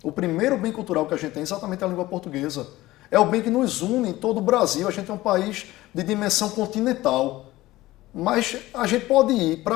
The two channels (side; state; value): right; quieter; 17.4 dB